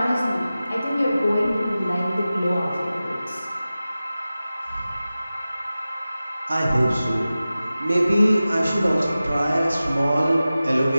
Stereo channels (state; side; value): inverted; both; correlation -0.95